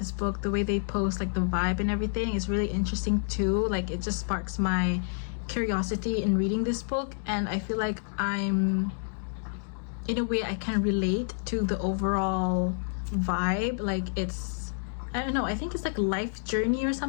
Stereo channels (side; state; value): right; silent; digital silence